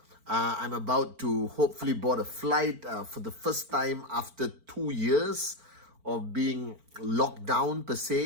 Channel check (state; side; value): late; left; 4.4 ms